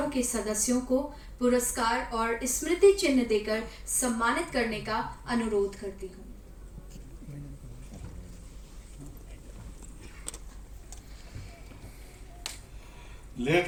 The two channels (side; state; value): both; identical; correlation 1.00